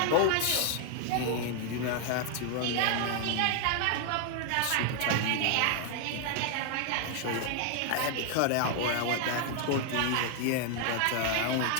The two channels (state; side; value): different; both; correlation 0.00